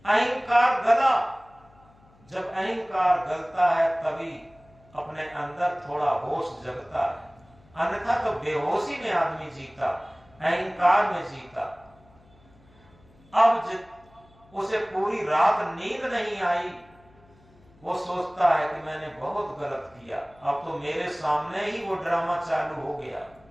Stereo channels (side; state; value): left; noise; hum, 29 dB below the sound